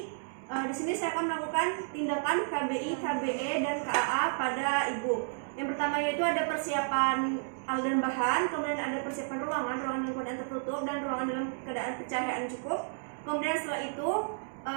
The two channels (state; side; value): silent; left; digital silence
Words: Di sini saya akan melakukan tindakan KBI, KBE, dan KAA pada ibu. Yang pertama yaitu ada persiapan alat dan bahan, kemudian ada persiapan ruangan dalam keadaan tertutup dan ruangan dalam keadaan pencahayaan cukup. Kemudian setelah itu